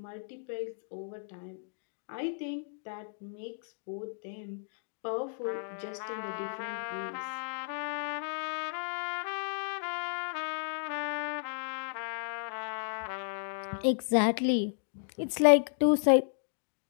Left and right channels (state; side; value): silent; right; digital silence